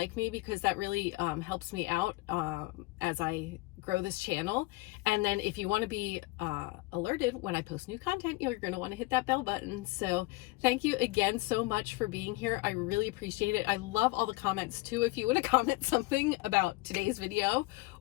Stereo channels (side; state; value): right; quieter; 21.2 dB